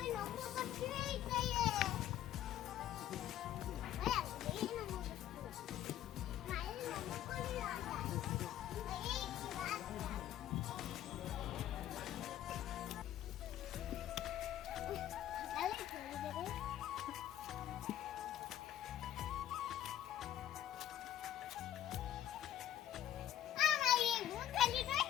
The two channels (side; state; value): right; quieter; 11.7 dB